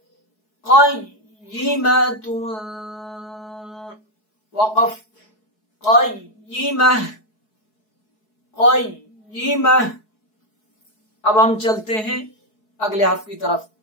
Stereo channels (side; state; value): right; late; 4.7 ms